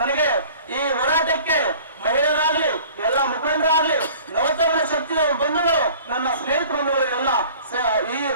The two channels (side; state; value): both; inverted; correlation -0.48